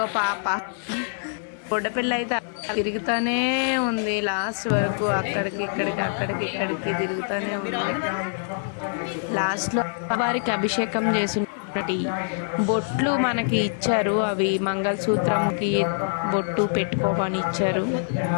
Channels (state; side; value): silent; right; digital silence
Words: పాప బుడ్డపిల్ల అయితే తిరుగుతూనే ఉంది లాస్ట్ వరకు, అక్కడికి ఇక్కడికి తిరుగుతూనే ఉంది. లాస్ట్లో వారికి అభిషేకం చేసినటువంటి బొట్లు మనకి ఇచ్చారు, అవి మంగళసూత్రంకి బొట్టు పెట్టుకోమని ఇచ్చారు.